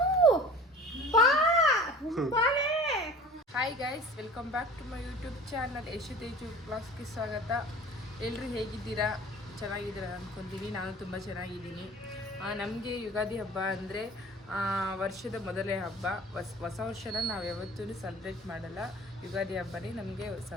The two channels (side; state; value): both; normal; correlation 0.43